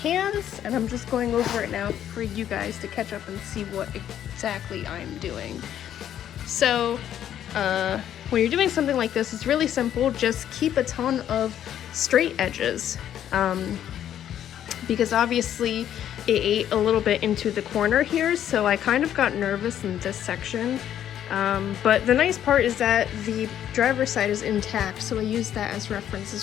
and I'm just going over it now for you guys to catch up and see what exactly I'm doing. So, when you're doing something like this, it's really simple. Just keep a ton of straight edges, because obviously it ate a little bit into the corner here, so I kind of got nervous in this section. But the nice part is that the driver's side is intact, so I use that as reference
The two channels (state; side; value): quieter; right; 10.5 dB